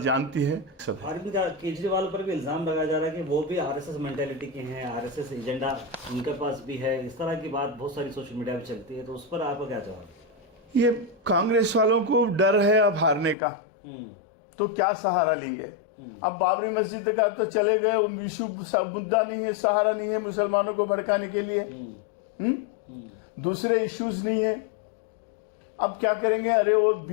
है। अरविंद केजरीवाल पर भी इल्जाम लगाया जा रहा है कि वो भी आरएसएस मेंटेलिटी के हैं, आरएसएस एजेंडा उनके पास भी है, इस तरह की बात बहुत सारी सोशल मीडिया पे चलती है, तो उस पर आपका क्या जवाब? ये कांग्रेस वालों को डर है अब हारने का, तो क्या सहारा लेंगे? अब बाबरी मस्जिद का तो चले गए, वो विश्व मुद्दा नहीं है, सहारा नहीं है मुसलमानों को भड़काने के लिए। दूसरे इश्यूज नहीं है। अब क्या करेंगे? अरे वो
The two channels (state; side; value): drops out; right; at 13.4 s